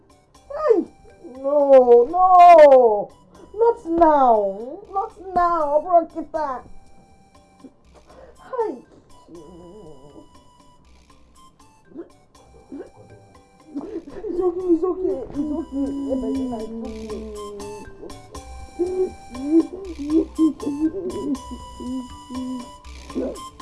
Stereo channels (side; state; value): both; identical; correlation 1.00